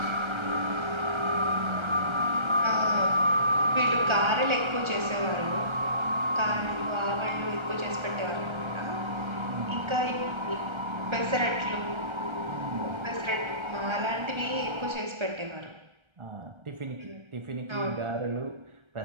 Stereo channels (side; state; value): left; late; 1.3 ms